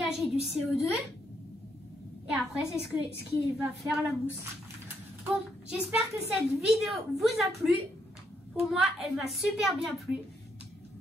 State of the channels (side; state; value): both; normal; correlation 0.75